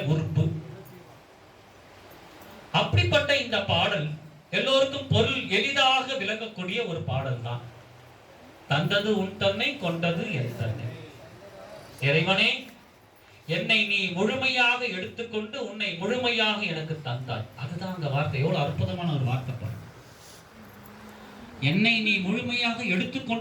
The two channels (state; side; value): identical; both; correlation 1.00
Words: உறுப்பு. அப்படிப்பட்ட இந்த பாடல் எல்லோருக்கும் பொருள் எளிதாக விளங்கக்கூடிய ஒரு பாடல் தான். தந்தது உன் தன்னை, கொண்டது என் தன்னை. இறைவனே, என்னை நீ முழுமையாக எடுத்துக்கொண்டு உன்னை முழுமையாக எனக்கு தந்தாய். அதுதான் அந்த வார்த்தை. எவ்வளவு அற்புதமான ஒரு வார்த்தை பாருங்க. என்னை நீ முழுமையாக